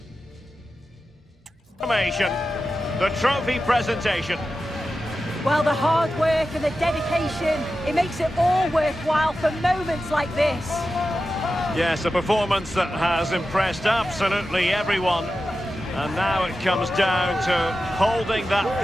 confirmation, the trophy presentation. Well, the hard work and the dedication, it makes it all worthwhile for moments like this. Yes, a performance that has impressed absolutely everyone. And now it comes down to holding that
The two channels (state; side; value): normal; both; correlation 0.92